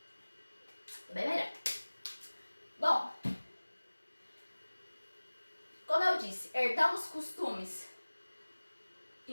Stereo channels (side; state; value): both; inverted; correlation -1.00